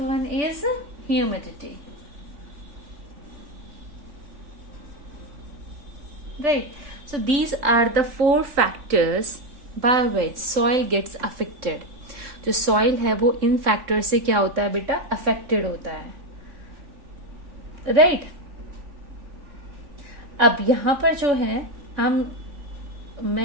one is humidity, right. So these are the four factors by which soil gets affected. जो soil है वो इन factor से क्या होता है बेटा, affected होता है, राइट। अब यहां पर जो है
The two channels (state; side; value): late; left; 3.8 ms